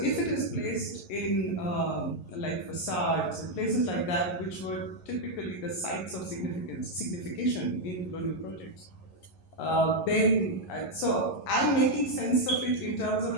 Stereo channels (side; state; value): right; late; 11 ms